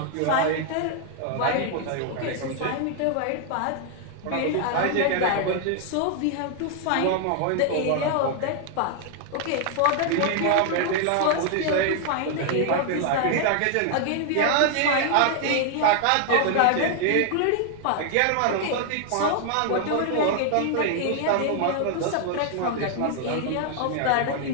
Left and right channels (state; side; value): different; both; correlation 0.00